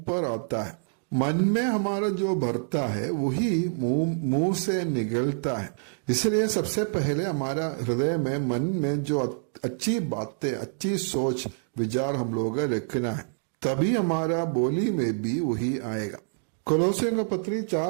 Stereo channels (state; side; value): silent; left; digital silence